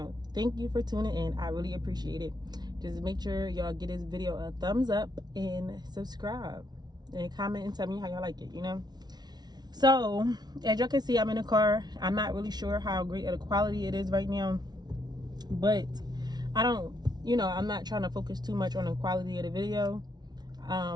thank you for tuning in. I really appreciate it. Just make sure y'all give this video a thumbs up and subscribe and comment and tell me how y'all like it, So as y'all can see, I'm in a car. I'm not really sure how great of the quality it is right now, but I'm not trying to focus too much on the quality of the video.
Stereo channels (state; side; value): late; left; 0.19 ms